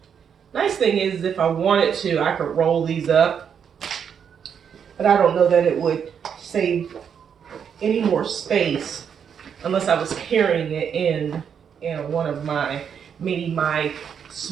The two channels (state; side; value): quieter; left; 7.6 dB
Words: Nice thing is, if I wanted to, I could roll these up. But I don't know that it would save any more space unless I was carrying it in one of my, maybe my